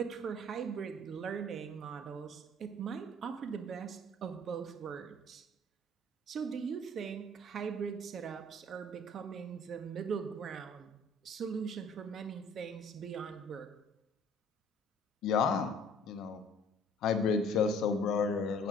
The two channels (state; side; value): normal; both; correlation 0.53